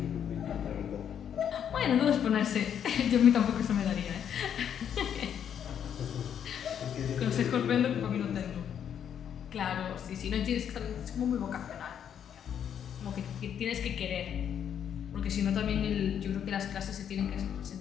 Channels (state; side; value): quieter; right; 8.8 dB